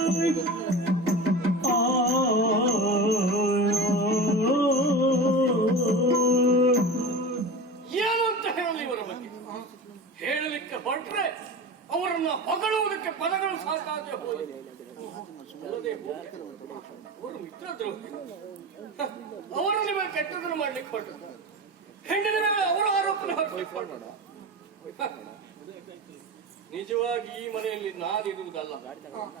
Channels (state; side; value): normal; both; correlation 0.29